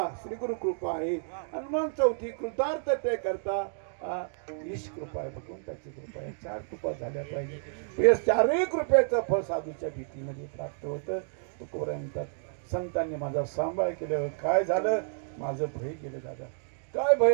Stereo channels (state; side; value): silent; left; digital silence